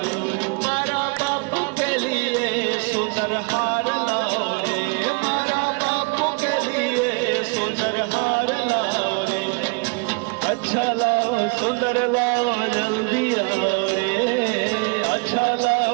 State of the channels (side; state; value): left; quieter; 32.6 dB